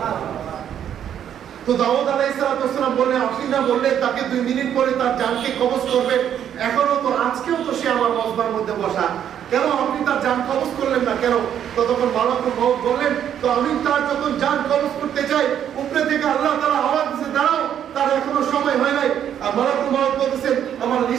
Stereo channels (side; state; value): left; quieter; 9.6 dB